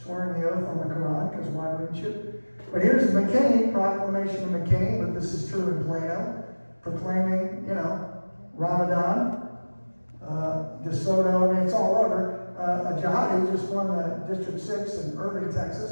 the oath on the Quran, because why wouldn't you? But here's McKinney, proclamation of McKinney, but this is true in Plano, proclaiming, Ramadan, DeSoto, I mean, it's all over. A jihadi just won the District 6 in Irving,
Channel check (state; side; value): inverted; both; correlation -1.00